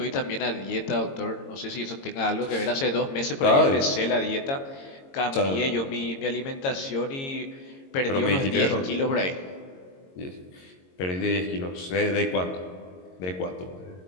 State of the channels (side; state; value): right; late; 22 ms